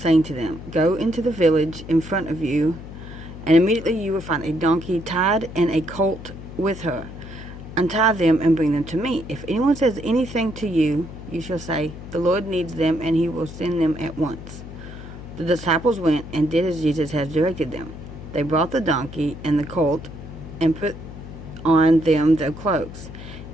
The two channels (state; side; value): noise; left; hum, 13 dB below the sound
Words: to them, "Go into the village in front of you, and immediately you will find a donkey tied and a colt with her. Untie them and bring them to me. If anyone says anything to you, you shall say, 'The Lord needs them,' and he will send them at once." The disciples went and did as Jesus had directed them. They brought the donkey and the colt and put on them their cloaks,